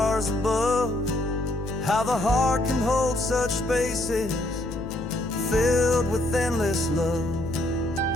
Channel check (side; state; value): left; noise; hum, 10 dB below the sound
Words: above, how the heart can hold such spaces filled with endless love.